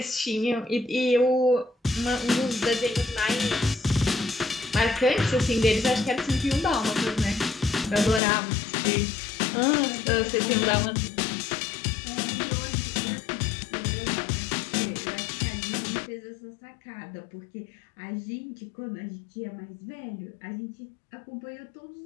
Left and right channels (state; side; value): drops out; right; at 8.2 s